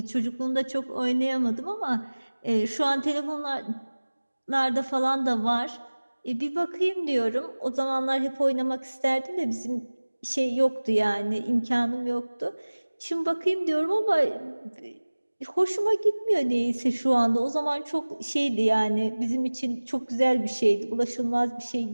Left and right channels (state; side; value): inverted; both; correlation -1.00